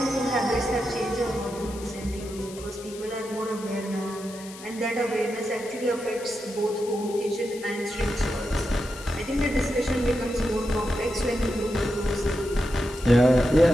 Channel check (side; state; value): left; noise; hiss, 16 dB below the sound